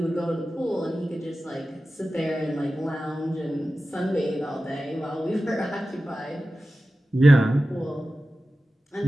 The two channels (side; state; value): both; normal; correlation 0.94